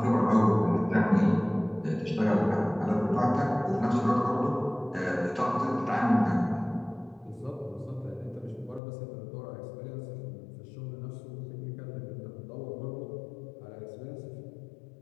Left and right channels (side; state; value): right; drops out; at 8.8 s